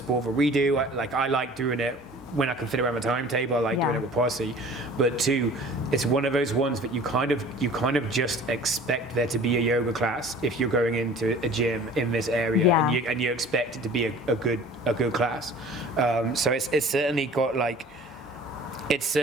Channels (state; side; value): normal; both; correlation 0.46